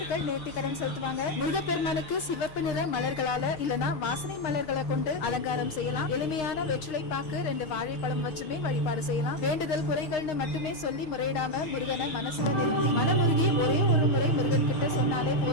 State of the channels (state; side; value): late; right; 6.5 ms